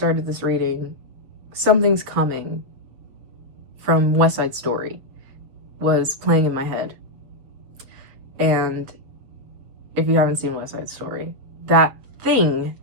this reading, Something's Coming from West Side Story was playing in my head. And if you haven't seen West Side Story, that thing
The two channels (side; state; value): left; late; 7.8 ms